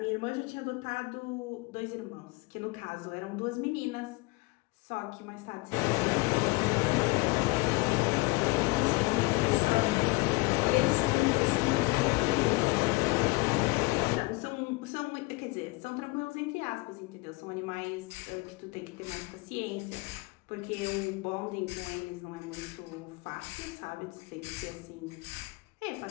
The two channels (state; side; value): quieter; right; 24.3 dB